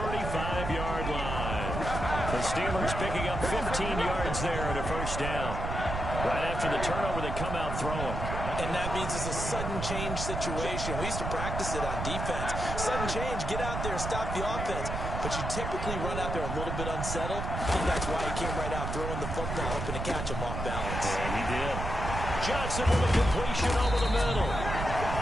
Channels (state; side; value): noise; right; rumble, 4 dB below the sound